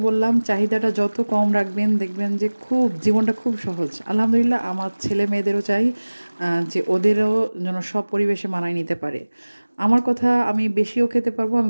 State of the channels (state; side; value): inverted; both; correlation -1.00